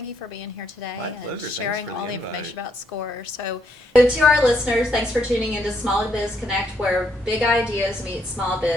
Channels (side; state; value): both; normal; correlation 0.74